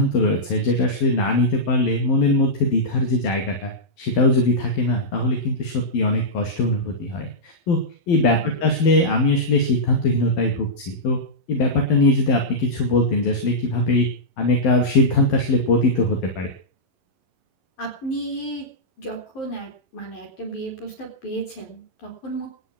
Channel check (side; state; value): right; late; 11 ms